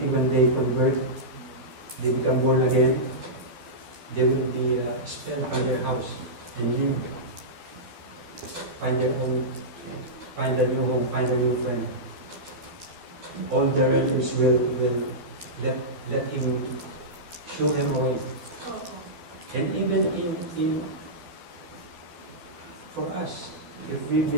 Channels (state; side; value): late; left; 12 ms